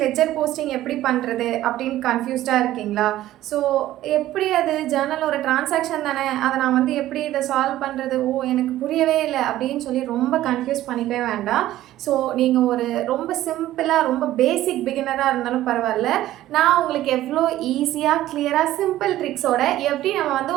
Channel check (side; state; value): left; quieter; 14.3 dB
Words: லெட்ஜர் போஸ்டிங் எப்படி பண்ணுறது அப்படின்னு கன்ஃபியூஸ்டாக இருக்கீங்களா? ஸோ எப்படி அது ஜேர்னல் ஒரு டிரான்சாக்ஷன் தானே, அதை நான் எப்படி இதை சால்வ் பண்ணுறது, எனக்கு புரியவே இல்லை அப்படின்னு சொல்லி ரொம்ப கன்ஃபியூஸ் பண்ணிக்கவே வேண்டாம். ஸோ நீங்கள் ஒரு ரொம்ப சிம்பிளாக ரொம்ப பேசிக் பிகினராக இருந்தாலும் பரவாயில்ல, நான் உங்களுக்கு எவ்வளோ ஈஸியாக கிளியராக சிம்பிள் ட்ரிக்ஸோட எப்படி